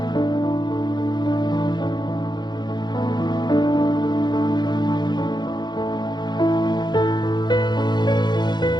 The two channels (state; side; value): late; right; 0.21 ms